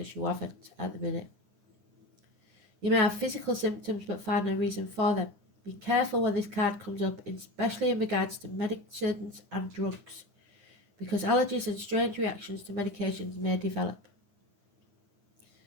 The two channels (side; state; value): left; late; 9.8 ms